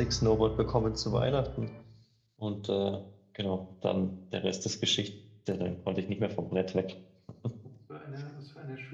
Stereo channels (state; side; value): identical; both; correlation 1.00